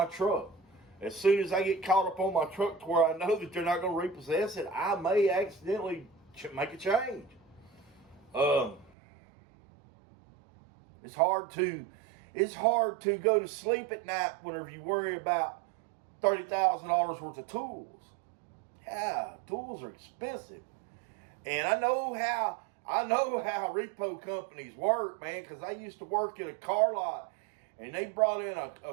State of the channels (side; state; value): left; drops out; at 8.9 s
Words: truck. As soon as I get caught up on my truck to where I know that they're not going to repossess it, I may accidentally make a change. It's hard to go to sleep at night whenever you worry about $30,000 worth of tools. Yeah, tools are expensive. And I know how repo companies work, man, because I used to work at a car lot, and they brought in